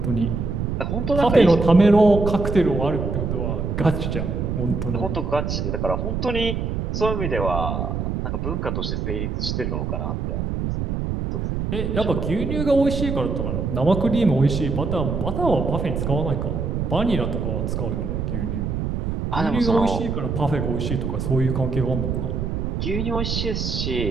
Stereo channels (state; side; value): noise; right; rumble, 2 dB below the sound